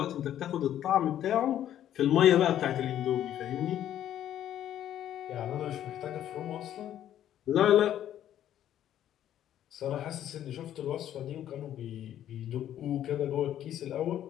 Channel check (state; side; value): quieter; right; 11.3 dB